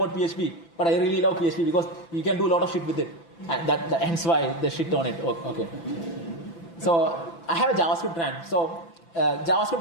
PHP, but I really love PHP because you can do a lot of shit with it. And hence why they shit on it. Okay. So I have a JavaScript ran. So JavaScript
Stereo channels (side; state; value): right; late; 5.9 ms